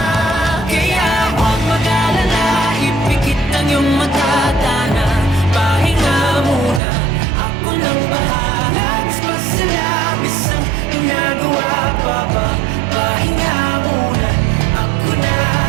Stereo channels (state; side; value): drops out; left; at 6.8 s